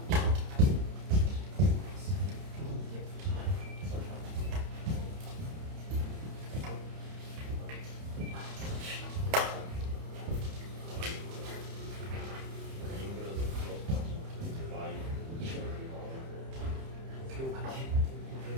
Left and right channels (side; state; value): left; late; 30 ms